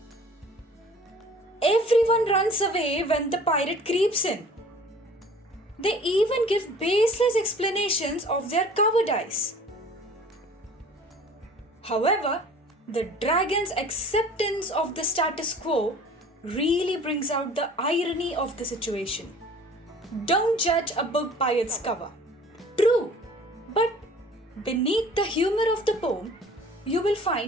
Everyone runs away when the pirate creeps in. They even give baseless explanations of their cowardice. However, the dragon's acceptance of the status quo really brings out the irony of the situation. Don't judge a book by its cover. True, but beneath the humor of the poem, you will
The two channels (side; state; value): both; normal; correlation 0.48